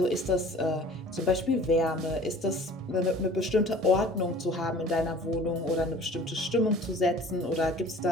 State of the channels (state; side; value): normal; both; correlation 0.47